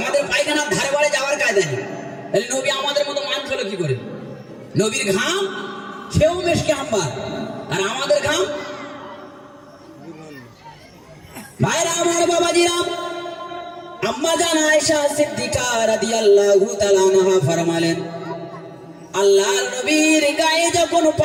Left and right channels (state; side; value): identical; both; correlation 1.00